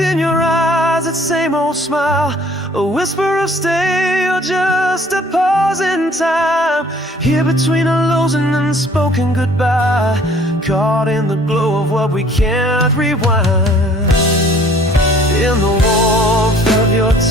your eyes, that same old smile, a whisper of stay or just a pause in time. Here between a lows and unspoken goodbye, caught in the glow of what we can't rewind. In the warmth of your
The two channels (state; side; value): normal; both; correlation 0.55